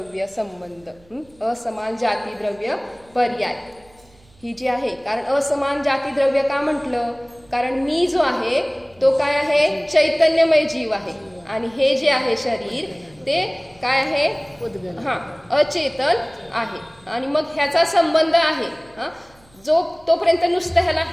संबंध, असमान जाती द्रव्य पर्याय ही जी आहे. कारण असमान जाती द्रव्य का म्हटलं, कारण मी जो आहे तो काय आहे, चैतन्यमय जीव आहे आणि हे जे आहे शरीर ते काय आहे, अचेतन आहे. आणि मग ह्याचा संबंध आहे जो तोपर्यंत नुसतं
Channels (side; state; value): right; noise; hum, 30 dB below the sound